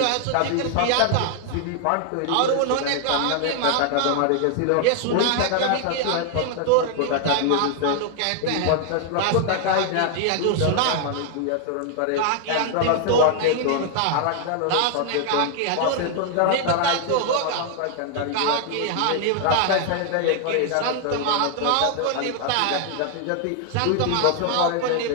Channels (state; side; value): different; both; correlation 0.00